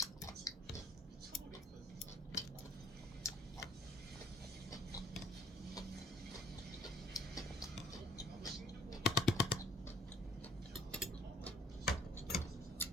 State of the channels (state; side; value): normal; both; correlation 0.54